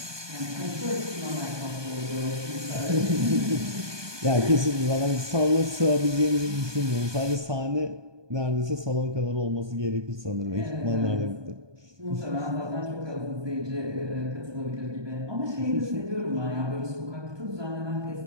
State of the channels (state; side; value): late; left; 1.2 ms